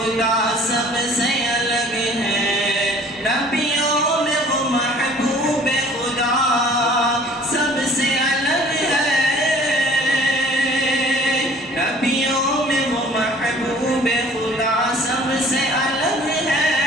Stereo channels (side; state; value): both; normal; correlation 0.51